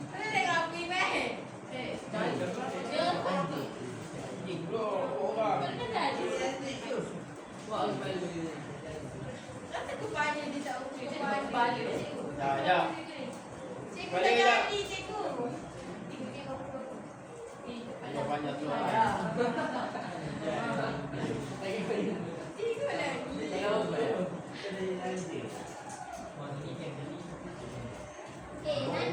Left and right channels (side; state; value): both; identical; correlation 1.00